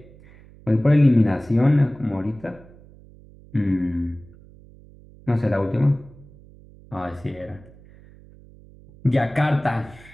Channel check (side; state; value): right; noise; hum, 23 dB below the sound